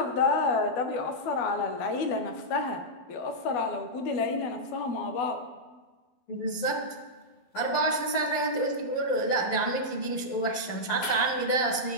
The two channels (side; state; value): right; late; 11 ms